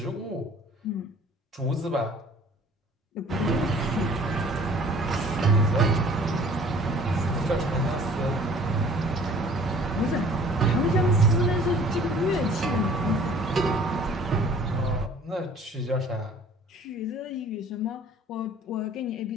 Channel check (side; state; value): both; normal; correlation 0.51